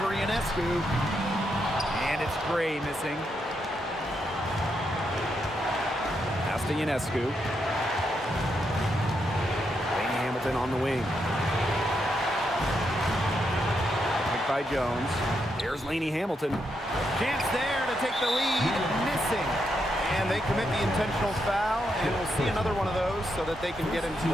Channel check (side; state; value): both; normal; correlation 0.81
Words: Ionescu. And it's Gray missing. Pass to Ionescu. Lainey Hamilton on the wing. By Jones. Here's Lainey Hamilton. Chance there to take the lead. Missing. And they commit the intentional foul, and we'll see another one of those so that they can get into